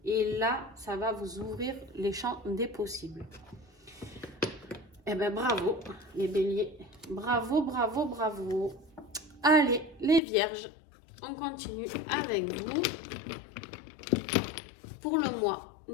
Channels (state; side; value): drops out; right; at 10.2 s